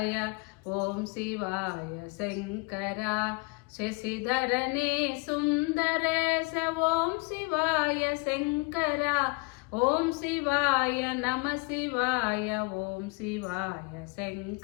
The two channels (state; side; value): quieter; right; 29.5 dB